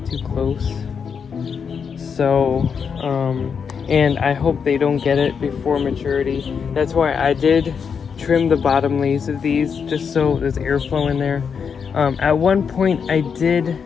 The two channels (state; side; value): quieter; right; 6.4 dB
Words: too close. So, and I hope they don't get it before maturity. That's why I did trim the bottom leaves of these, just so there's airflow in there. At one point I did